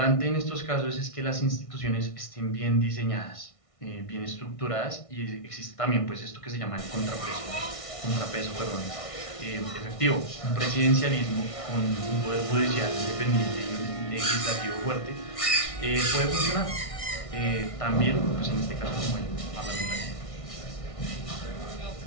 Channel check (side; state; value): right; late; 1.6 ms